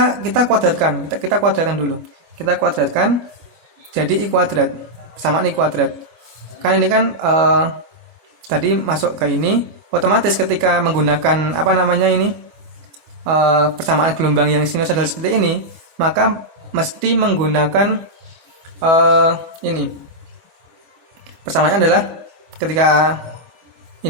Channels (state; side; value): late; left; 25 ms